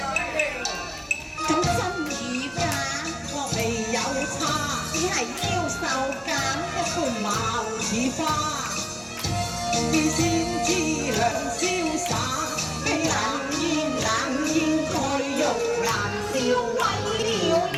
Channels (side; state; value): both; identical; correlation 1.00